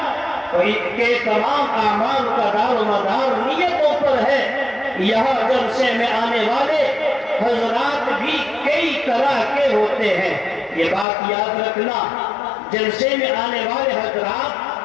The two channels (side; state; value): right; drops out; at 11.1 s